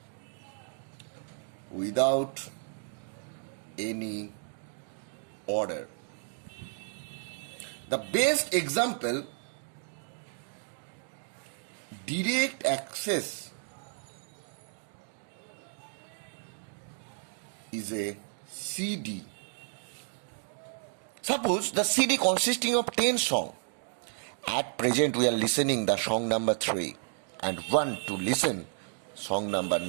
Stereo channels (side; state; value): left; silent; 56 dB below the other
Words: without any order. The best example, direct access, is a CD. Suppose the CD consisting of 10 songs. At present we are listening the song number 3 and want to listen song number